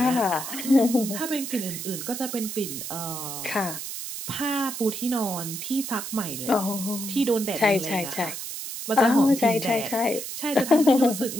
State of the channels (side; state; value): right; noise; hiss, 7 dB below the sound